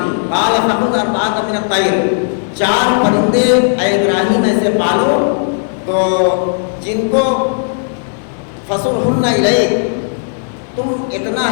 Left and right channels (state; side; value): silent; right; digital silence